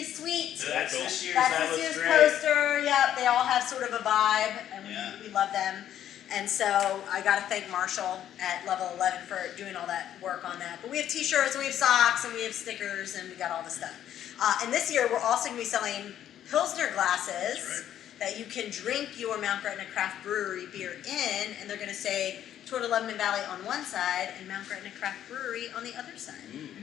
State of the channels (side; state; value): right; quieter; 10.9 dB